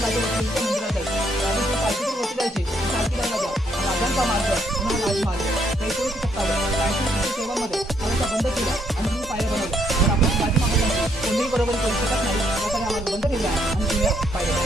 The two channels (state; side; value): normal; both; correlation 0.72